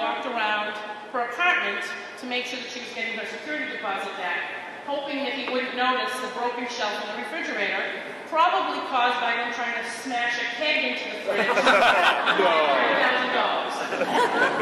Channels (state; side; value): identical; both; correlation 1.00